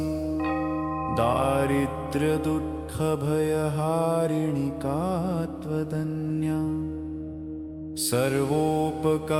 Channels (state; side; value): identical; both; correlation 1.00